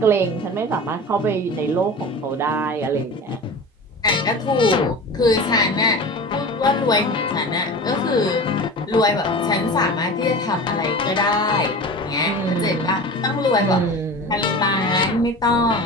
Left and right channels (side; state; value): both; normal; correlation 0.34